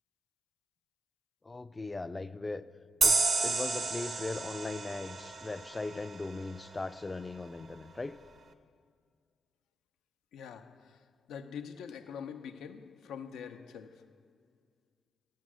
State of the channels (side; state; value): both; normal; correlation 0.88